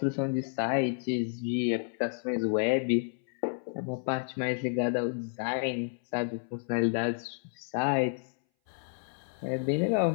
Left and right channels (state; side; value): silent; right; 57 dB below the other